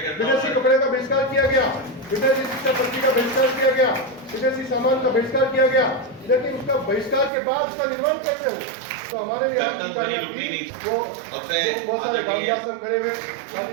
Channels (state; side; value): drops out; left; at 7.3 s